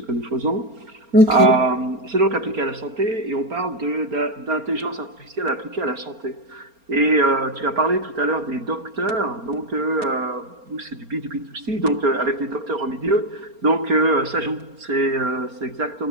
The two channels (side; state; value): left; late; 4.3 ms